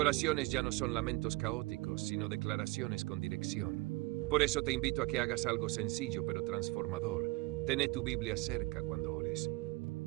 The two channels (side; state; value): left; quieter; 23.1 dB